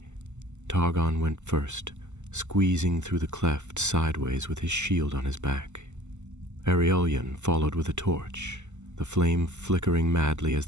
Targon went first, squeezing through the cleft sideways with his shield on his back. Aurelion followed with a torch, the flame flickering madly as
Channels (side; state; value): left; late; 0.83 ms